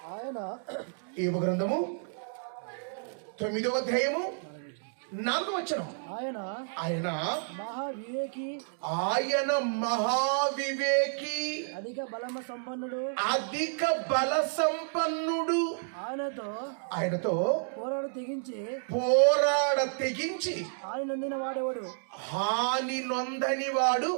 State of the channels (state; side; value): silent; left; digital silence